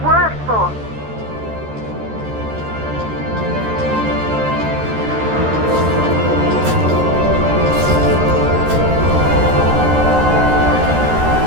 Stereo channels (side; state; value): left; late; 13 ms